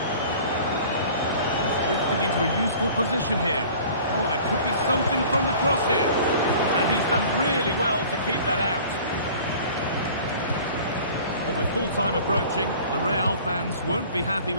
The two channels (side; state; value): both; inverted; correlation -0.46